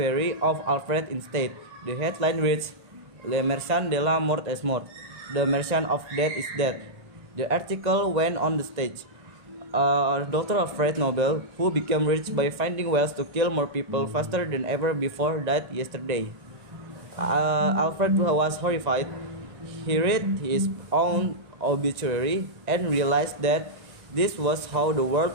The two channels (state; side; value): late; left; 1.9 ms